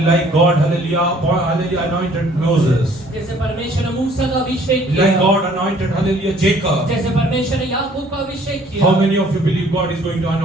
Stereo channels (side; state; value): both; normal; correlation 0.58